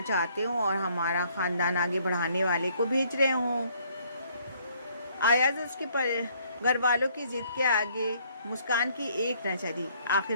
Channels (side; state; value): both; inverted; correlation -0.64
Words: चाहते हों और हमारा ख़ानदान आगे बढ़ाने वाले को भेज रहे हों। अयाज उसके घर वालों की ज़िद के आगे मुस्कान की एक न चली। आखिर